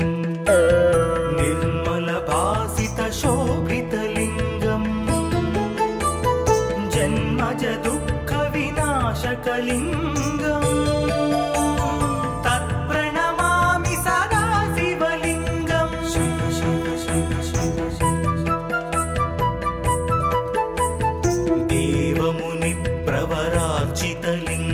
निर्मलभासितशोभितलिङ्गम् जन्मजदुःखविनाशकलिङ्गम् तत्प्रणमामि सदा शिवलिङ्गम्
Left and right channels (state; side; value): identical; both; correlation 1.00